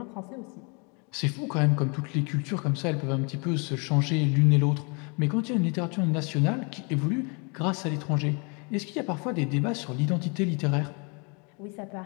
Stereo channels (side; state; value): right; quieter; 33.5 dB